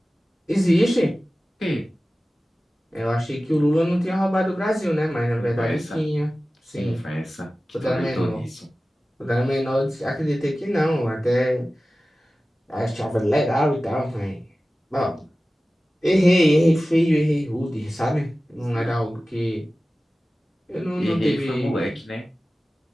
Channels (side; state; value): both; normal; correlation 0.96